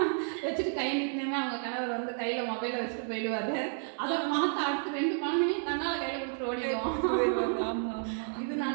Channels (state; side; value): silent; left; 57 dB below the other